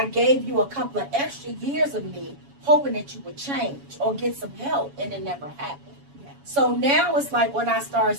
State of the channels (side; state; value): left; late; 7.1 ms